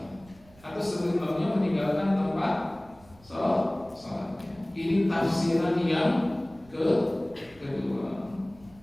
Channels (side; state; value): right; noise; rumble, 25 dB below the sound